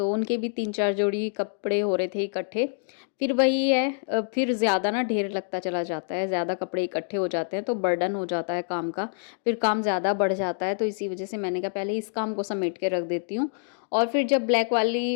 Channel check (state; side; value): silent; right; digital silence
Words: उनके भी 3-4 जोड़ी कपड़े हो रहे थे इकट्ठे। फिर वही है, फिर ज़्यादा ना ढेर लगता चला जाता है, ज़्यादा कपड़े इकट्ठे हो जाते हैं तो बर्डन हो जाता है काम का, फिर काम ज़्यादा बढ़ जाता है। तो इसी वजह से मैंने कहा पहले इस काम को समेट के रख देती हूँ, और फिर जब ब्लैक वाली